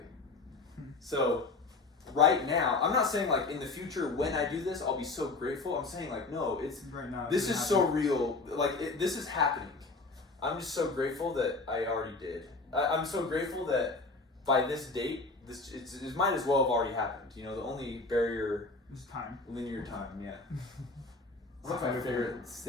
So right now, I'm not saying like in the future when I do this I'll be so grateful. I'm saying like no, it's right now. This is so real. Like this is happening. I'm just so grateful that I already did. I'm so grateful that by this date, it might as well have already happened. The only barrier is time. Linear time. Yeah. That's my favorite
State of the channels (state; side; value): quieter; right; 3.7 dB